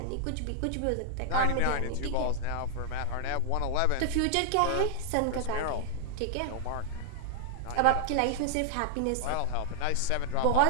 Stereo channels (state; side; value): different; both; correlation -0.01